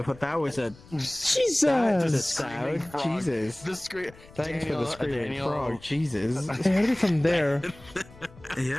but that was a Jesus! sound. Jesus. The screen. Thanks for the screaming frog. Jesus. I heard it from there.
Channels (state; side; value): noise; left; rumble, 22 dB below the sound